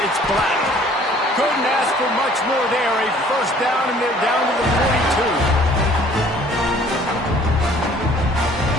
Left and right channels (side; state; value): both; normal; correlation 0.55